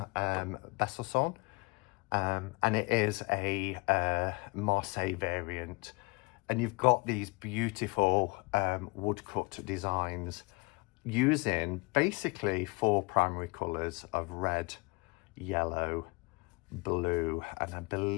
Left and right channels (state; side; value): quieter; right; 27.8 dB